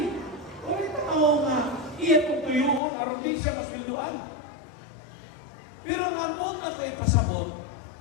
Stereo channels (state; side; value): drops out; right; at 2.8 s